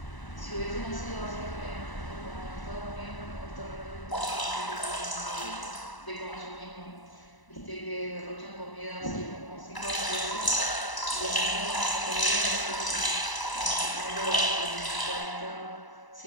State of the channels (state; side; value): late; right; 1.0 ms